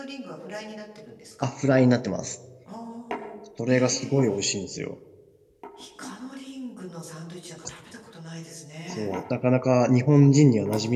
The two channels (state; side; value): identical; both; correlation 1.00